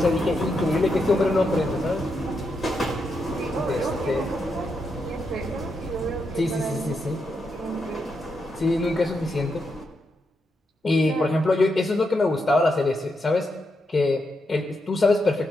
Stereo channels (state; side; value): normal; both; correlation 0.83